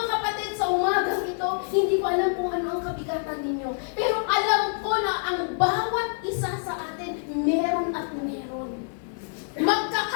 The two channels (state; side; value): silent; right; digital silence